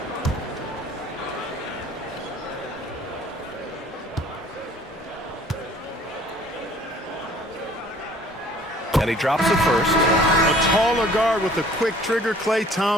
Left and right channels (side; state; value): both; normal; correlation 0.53